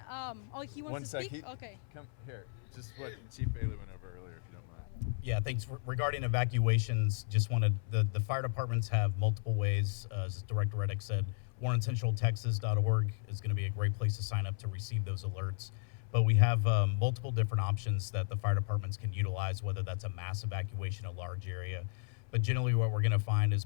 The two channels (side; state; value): right; silent; 55 dB below the other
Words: He wants to speak? Okay. Come here. Just what Chief Bailey went over earlier, if you don't mind. Yeah, thanks. Regarding evacuations, just wanted, the fire departments have multiple ways. As Director Reddick said, warncentraltexas.org is going to be a great place to sign up to receive those alerts. But we have multiple different options that the fire departments can utilize, whether that's a mass evacuation, a large area. But generally what we're going to find